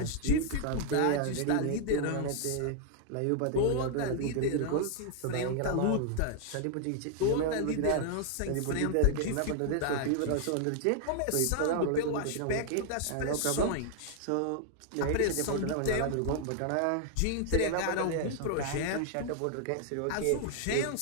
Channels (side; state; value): both; different; correlation 0.00